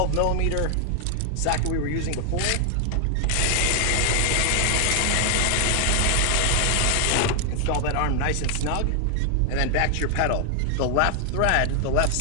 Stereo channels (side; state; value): both; different; correlation 0.00